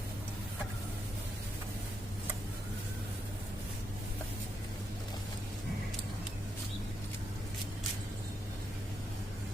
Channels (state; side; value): normal; both; correlation 0.81